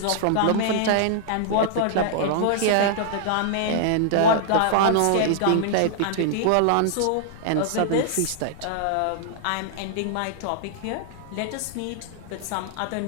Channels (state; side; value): different; both; correlation -0.01